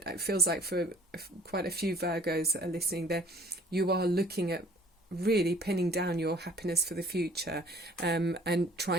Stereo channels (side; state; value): both; normal; correlation 0.52